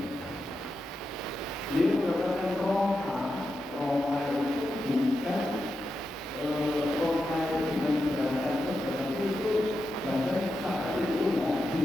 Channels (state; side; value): normal; both; correlation 0.88